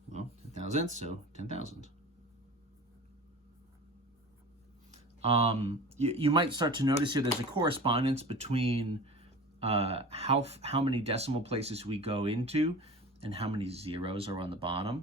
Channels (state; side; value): normal; both; correlation 0.36